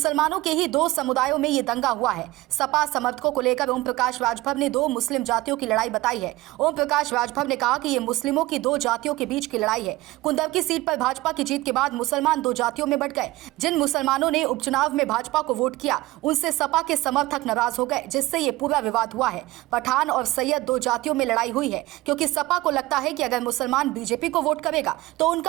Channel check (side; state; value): left; quieter; 18.7 dB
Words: के ही दो समुदायों में ये दंगा हुआ है। सपा समर्थकों को लेकर ओम प्रकाश राजभर ने दो मुस्लिम जातियों की लड़ाई बताई है। ओम प्रकाश राजभर ने कहा कि ये मुस्लिमों की दो जातियों के बीच की लड़ाई है। कुंदरकी सीट पर भाजपा की जीत के बाद मुसलमान दो जातियों में बंट गए। जिन मुसलमानों ने उपचुनाव में भाजपा को वोट किया उनसे सपा के समर्थक नाराज हो गए, जिससे ये पूरा विवाद हुआ है। पठान और सैयद दो जातियों में लड़ाई हुई है, क्योंकि सपा को लगता है कि अगर मुसलमान बीजेपी को वोट करेगा तो